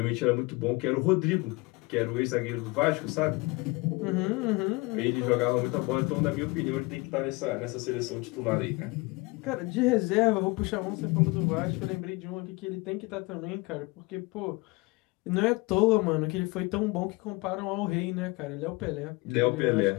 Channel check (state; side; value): quieter; right; 24.9 dB